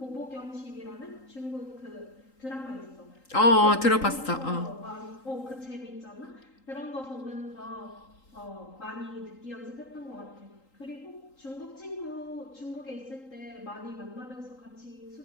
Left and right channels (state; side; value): late; right; 3.8 ms